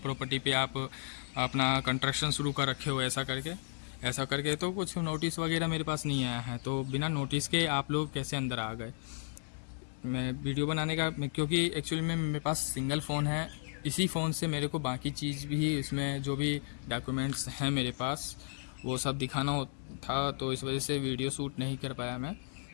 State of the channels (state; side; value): silent; right; 55 dB below the other